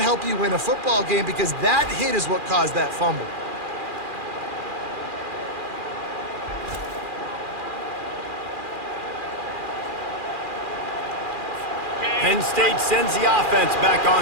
help you win a football game, because that hit is what caused that fumble. Penn State sends the offense back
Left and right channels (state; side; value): late; left; 2.4 ms